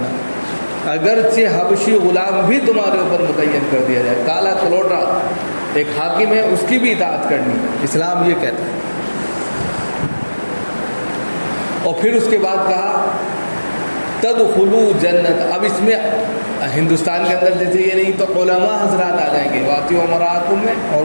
اگرچہ حبشی غلام بھی تمہارے اوپر متعین کر دیا جائے، کالا کلوٹا ایک حاکم ہے، اس کی بھی اطاعت کرنی، اسلام یہ کہتا ہے۔ اور پھر اس کے بعد کہا تدخلوا جنت۔ اب اس میں ہندوستان کے اندر جیسے یہ نہیں تو علماء حضرات آ جائیں گے، وَآتِیعُوا أُمَرَاءَکُم میں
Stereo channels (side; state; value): both; inverted; correlation -1.00